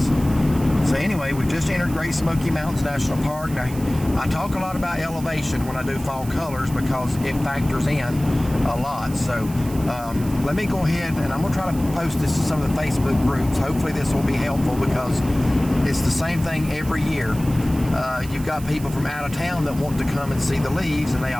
So anyway, we've just entered Great Smoky Mountains National Park. Now, I talk a lot about elevation when I do fall colors because it factors in a lot. So let me go ahead and I'm going to try to post this to some of the Facebook groups. Hopefully this will be helpful because it's the same thing every year. You've got people from out of town that want to come and see the leaves, and they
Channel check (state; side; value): noise; right; hiss, 16 dB below the sound